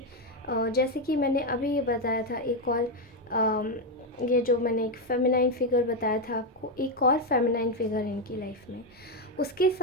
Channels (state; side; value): normal; both; correlation 0.06